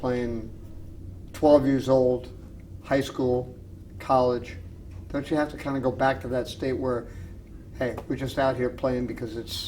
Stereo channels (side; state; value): both; identical; correlation 1.00